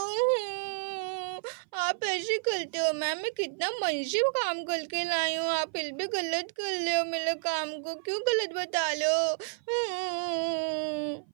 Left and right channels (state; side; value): silent; left; 56 dB below the other